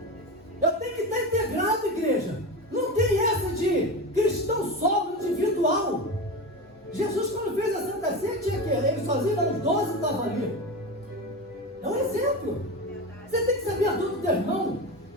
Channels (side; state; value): both; normal; correlation 0.23